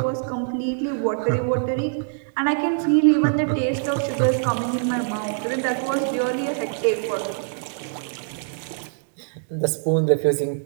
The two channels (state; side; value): silent; left; digital silence